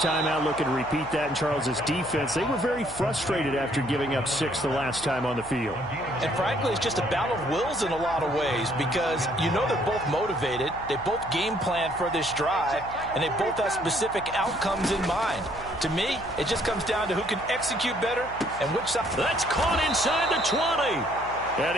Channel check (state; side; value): noise; left; hum, 16 dB below the sound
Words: time out. Looking to repeat that in Charles's defense. They were very frustrated after giving up 6 the last time on the field. And frankly, it's just a battle of wills in a lot of ways because you know they're both motivated. They both game plan for this drive, and they both have specific outcomes in mind. To me, it just comes down to who can execute better and which side. That's caught inside the 20. And